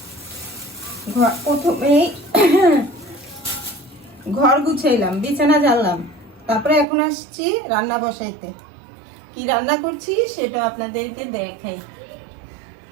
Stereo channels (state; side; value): drops out; left; at 6.9 s